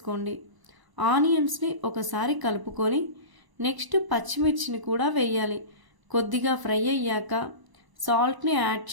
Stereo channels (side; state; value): left; late; 1.0 ms